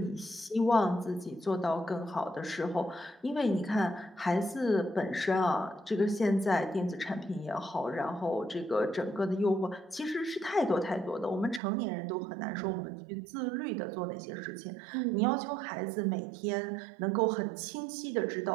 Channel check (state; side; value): drops out; left; at 11.6 s